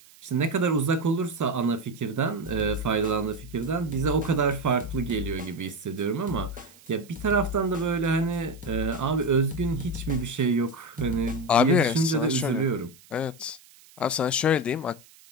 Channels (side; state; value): right; noise; hiss, 25 dB below the sound